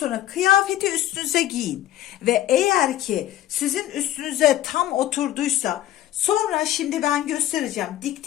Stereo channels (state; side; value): quieter; right; 13.5 dB